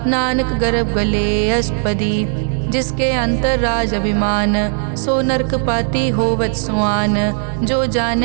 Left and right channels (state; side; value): silent; left; 56 dB below the other